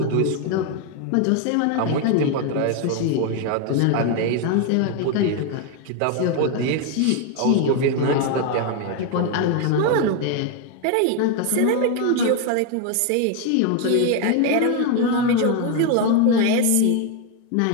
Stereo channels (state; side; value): different; both; correlation 0.01